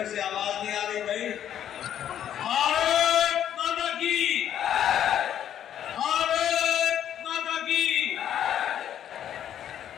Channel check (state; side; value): quieter; right; 10.2 dB